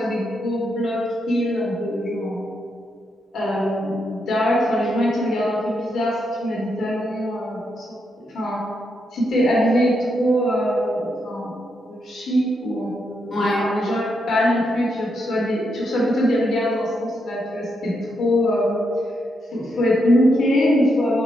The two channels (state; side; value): normal; both; correlation 0.81